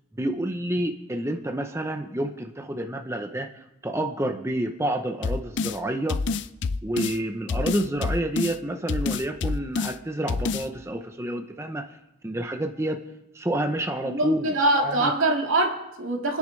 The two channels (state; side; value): normal; both; correlation 0.43